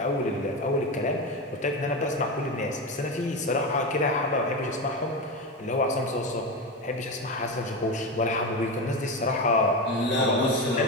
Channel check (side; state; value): both; normal; correlation 0.18